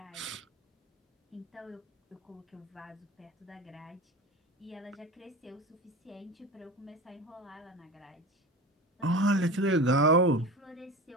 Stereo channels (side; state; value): both; normal; correlation 0.30